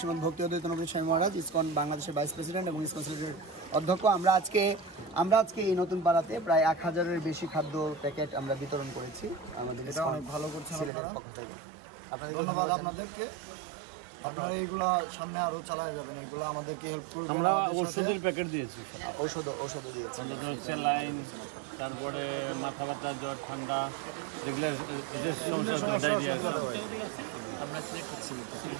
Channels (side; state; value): left; drops out; at 10.9 s